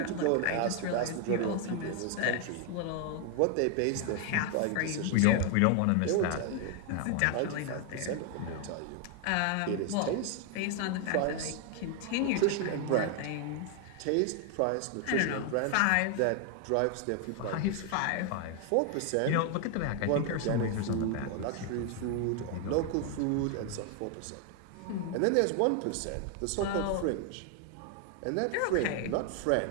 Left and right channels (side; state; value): both; different; correlation 0.00